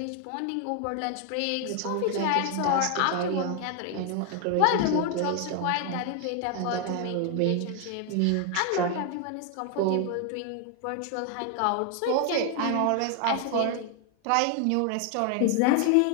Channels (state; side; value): different; both; correlation 0.00